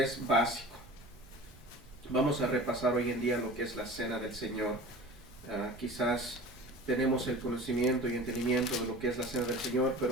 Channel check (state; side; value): normal; both; correlation 0.39